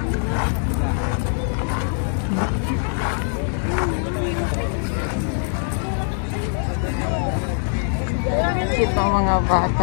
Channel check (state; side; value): silent; right; 64 dB below the other